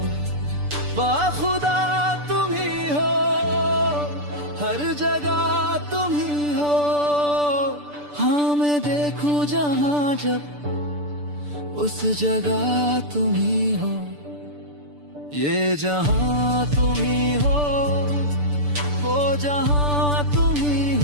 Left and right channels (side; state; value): left; late; 6.8 ms